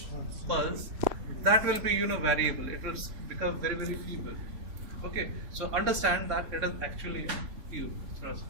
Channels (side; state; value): left; late; 3.6 ms